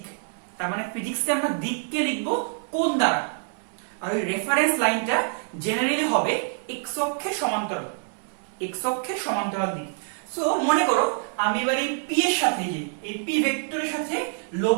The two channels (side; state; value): left; silent; digital silence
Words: তার মানে ফিজিক্সে আমরা দিককে লিখবো কোণ দ্বারা, আর ওই রেফারেন্স লাইনটা জেনারেলি হবে এক্স অক্ষের সমান্তরাল দিক। সো মনে করো আমি এবার এই পি এর সাথে, এই পি ভেক্টরের সাথে